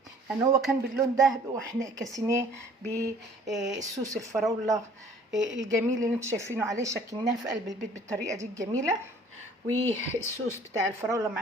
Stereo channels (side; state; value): both; normal; correlation 0.54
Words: هو كان باللون ده، واحنا كسيناه بالصوص الفراوله الجميل اللي انتوا شايفينه عليه. شكلناه في قلب البيت بالطريقه دي الجميله. والصوص بتاع الفراوله